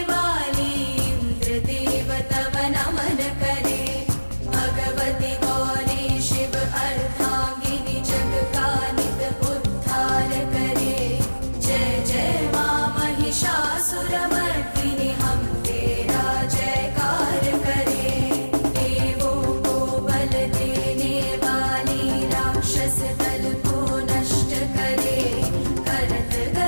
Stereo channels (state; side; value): inverted; both; correlation -1.00